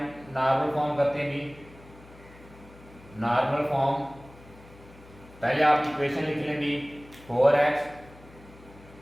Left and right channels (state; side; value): noise; left; hum, 22 dB below the sound